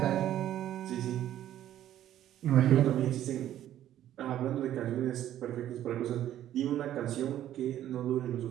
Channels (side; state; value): left; quieter; 12.1 dB